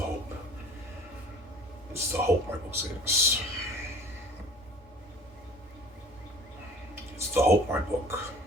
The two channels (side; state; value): both; normal; correlation 0.47